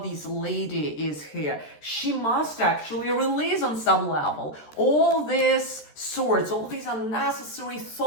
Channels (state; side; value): late; right; 13 ms